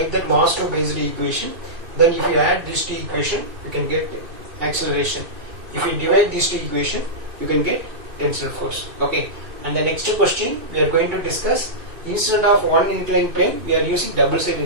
that mass 2 based equation. Then if you add these two equation, you can get acceleration. If you divide these two equation, you can get tensile force. Okay. And the next question we are going to discuss, instead of one inclined plane, we are using double side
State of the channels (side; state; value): left; late; 2.6 ms